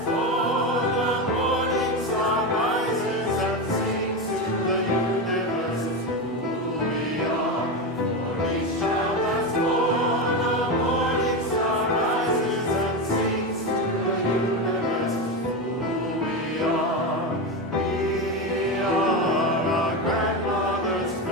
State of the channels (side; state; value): both; normal; correlation 0.16